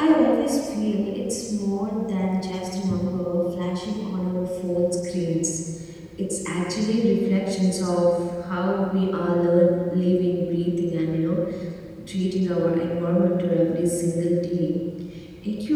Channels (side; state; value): both; identical; correlation 1.00